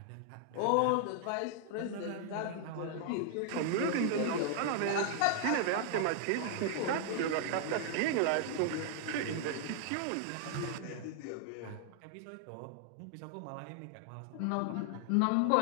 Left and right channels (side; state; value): both; different; correlation 0.00